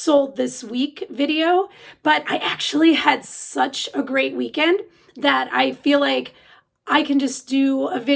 This Week video, but I actually had such a great weekend that I feel like I can just do a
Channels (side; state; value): both; identical; correlation 1.00